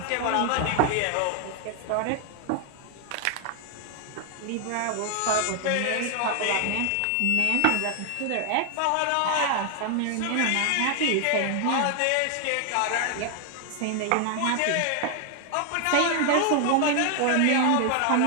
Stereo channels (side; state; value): both; different; correlation 0.00